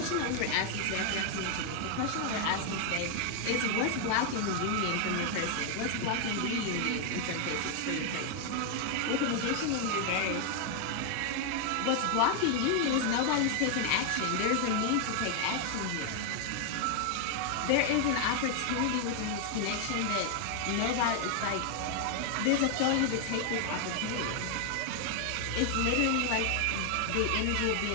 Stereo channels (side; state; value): both; different; correlation 0.00